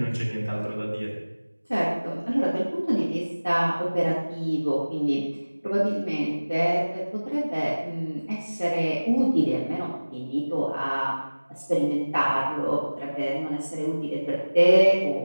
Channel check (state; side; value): inverted; both; correlation -1.00